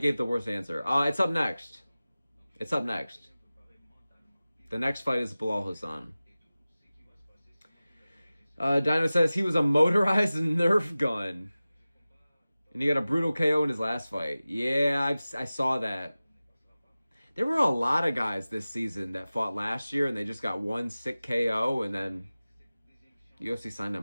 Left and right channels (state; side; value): inverted; both; correlation -0.97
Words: the worst answer. It's up next. It's up next. The next fight is Bilal Hassan. Dino says he was a motorized Nerf gun. And he got a brutal KO in his last fight. Yeah, I saw that. There were a lot of guys this season that fought last year and they just got one sick KO and then UFC signed